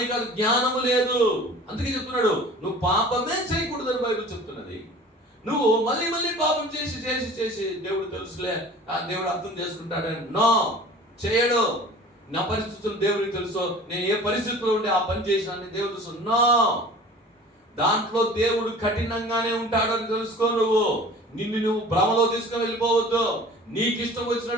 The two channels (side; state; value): both; normal; correlation 0.43